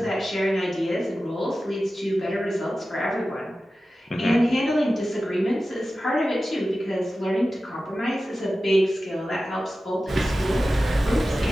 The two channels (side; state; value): both; normal; correlation 0.94